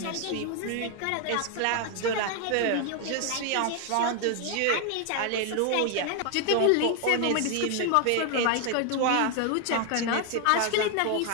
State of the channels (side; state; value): both; different; correlation 0.01